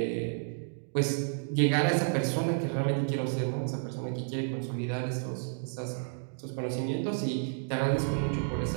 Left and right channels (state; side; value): silent; left; digital silence